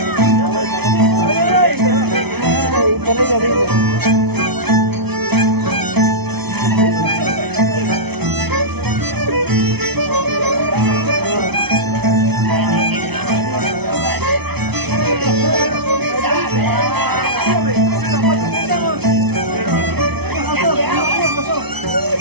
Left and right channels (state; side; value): late; left; 0.99 ms